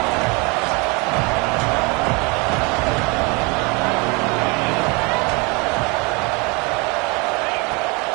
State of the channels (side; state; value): left; quieter; 29.0 dB